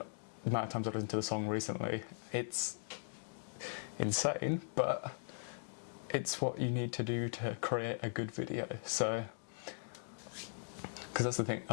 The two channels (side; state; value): right; silent; digital silence